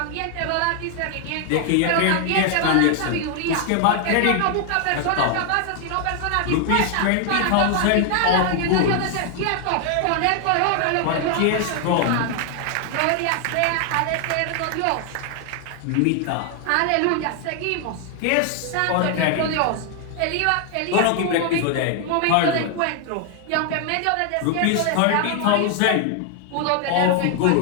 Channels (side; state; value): both; different; correlation 0.00